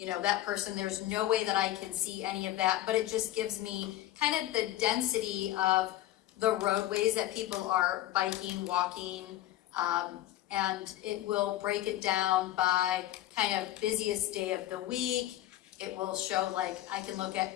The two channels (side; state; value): right; quieter; 14.5 dB